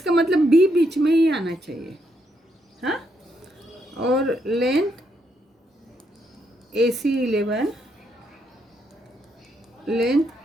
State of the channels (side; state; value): both; normal; correlation 0.77